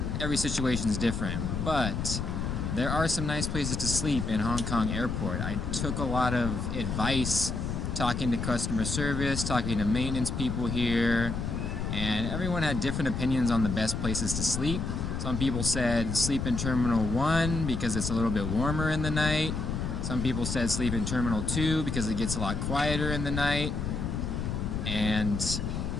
Every situation's different, but there are some nice places to sleep in Hong Kong airport. I took a lot of advice talking to customer service, talking to maintenance people here, and everyone had different opinions on the best places to sleep. Some people said sleep in Terminal 1 because it's a little bit warmer in the night. Some people said sleep in Terminal 2 because it gets a lot quieter in the night. And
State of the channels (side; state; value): left; noise; rumble, 3 dB below the sound